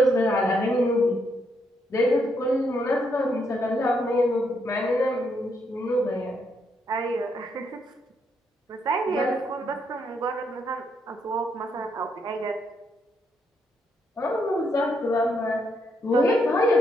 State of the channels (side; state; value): both; normal; correlation 0.76